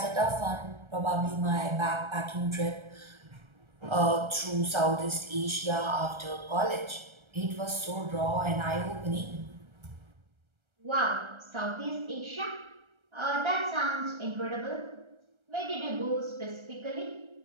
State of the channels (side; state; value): left; late; 1.3 ms